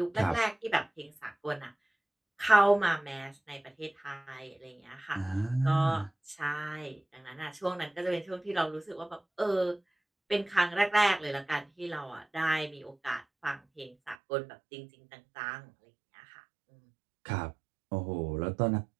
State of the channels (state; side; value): drops out; left; at 14.2 s